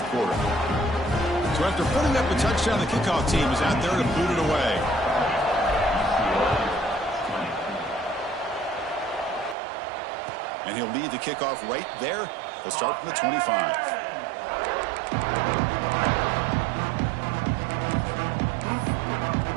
quarter. So after putting up a touchdown, the kickoff team is out there to boot it away. And he'll lead the kickoff right there. He'll start from the 25.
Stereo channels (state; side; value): drops out; left; at 9.6 s